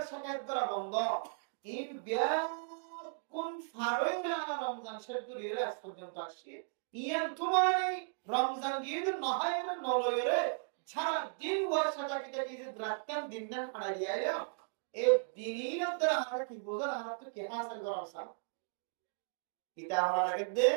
শাকায়াত করা বন্ধ ইন কোন ফারই না রমজান শেষ করে আজ পর্যন্ত আসছে ইয়ান তোমার রমজান গিয়ে না হয় না নলয়রে সারা দিন বর্ষাটা কি যে রাতকান দিন না হারিয়ে আইলো এই দিনের দ্বারা আমরা কি বোঝার আমরা তো কে হাসিল করা উচিত এটা আমরা লাগবে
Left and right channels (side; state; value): left; silent; digital silence